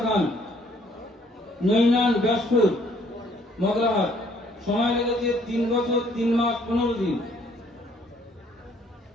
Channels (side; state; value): both; normal; correlation 0.63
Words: খান, নৈনান, ব্যাসপুর, মগরাহাট। সময় লেগেছে 3 বছর 3 মাস 15 দিন।